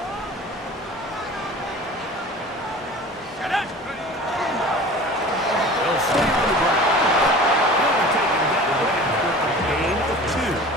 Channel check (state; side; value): normal; both; correlation 0.40